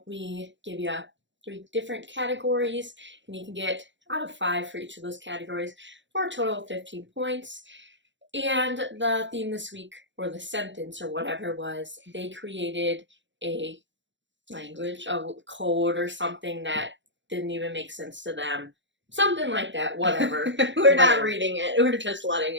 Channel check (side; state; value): left; late; 0.54 ms